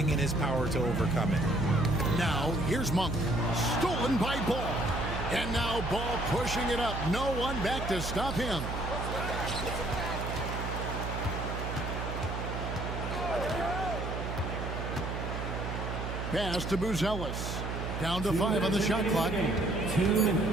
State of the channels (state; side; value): noise; right; hum, 4 dB below the sound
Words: in his power to overcome it. Now, here's Monk. Stolen by Ball. And now Ball pushing it up. No one back to stop him. Pass to Buzelis. Down to 5 on the shot clock. 2